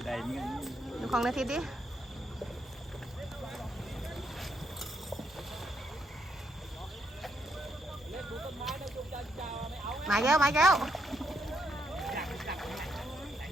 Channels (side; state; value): both; normal; correlation 0.76